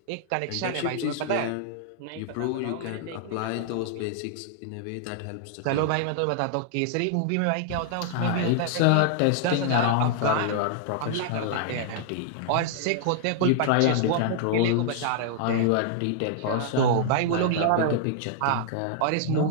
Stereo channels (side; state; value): both; different; correlation -0.01